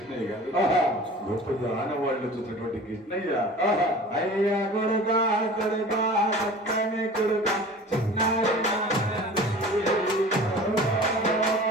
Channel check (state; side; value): normal; both; correlation 0.40